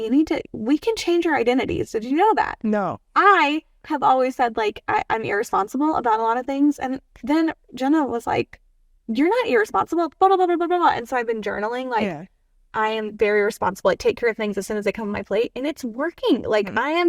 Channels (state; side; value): identical; both; correlation 1.00